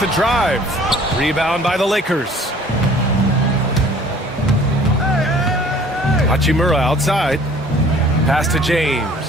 drive. Rebound by the Lakers. Hachimura outside. Pass to James.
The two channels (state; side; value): normal; both; correlation 0.52